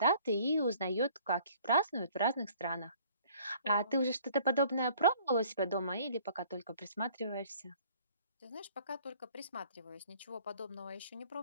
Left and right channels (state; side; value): inverted; both; correlation -0.56